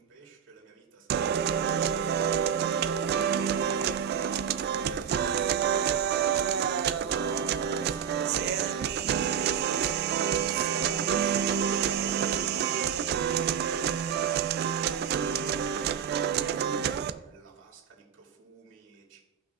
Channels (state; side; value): quieter; left; 8.1 dB